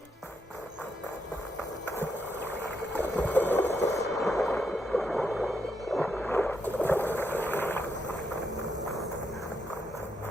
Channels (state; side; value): normal; both; correlation 0.80